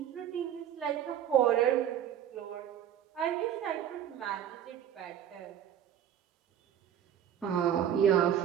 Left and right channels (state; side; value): quieter; left; 10.1 dB